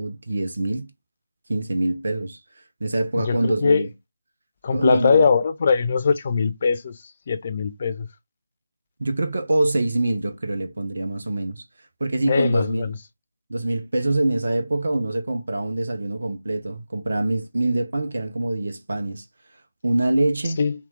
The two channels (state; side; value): inverted; both; correlation -0.89